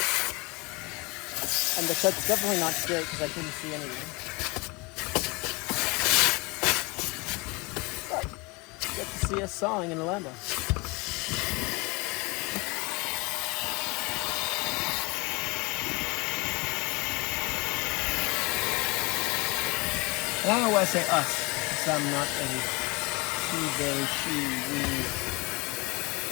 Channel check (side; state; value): right; quieter; 26.8 dB